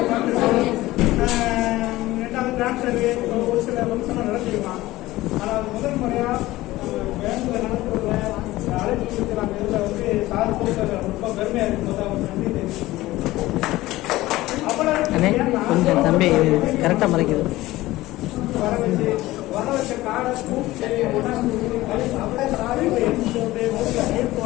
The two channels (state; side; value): quieter; right; 17.6 dB